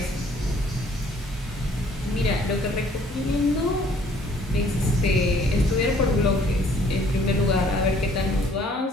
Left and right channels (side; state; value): both; normal; correlation 0.59